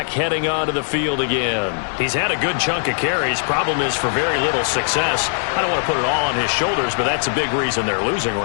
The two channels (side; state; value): right; silent; digital silence